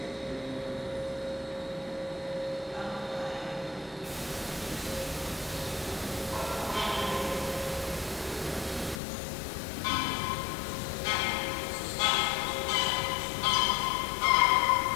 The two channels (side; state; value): right; drops out; at 9.0 s